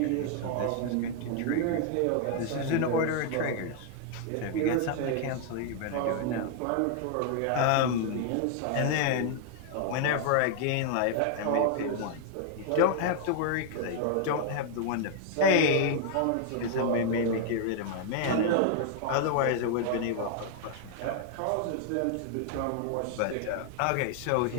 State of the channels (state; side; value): different; both; correlation 0.00